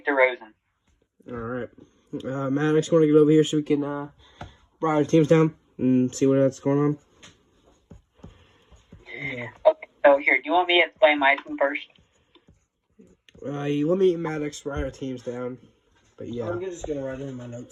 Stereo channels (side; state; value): both; identical; correlation 1.00